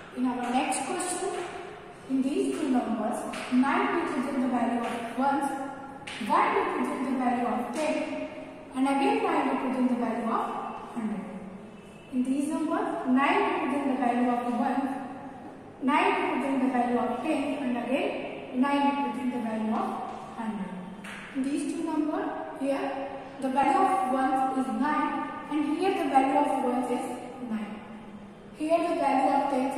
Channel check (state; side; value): identical; both; correlation 1.00